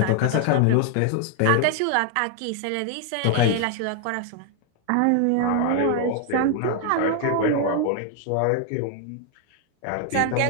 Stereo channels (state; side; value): different; both; correlation 0.00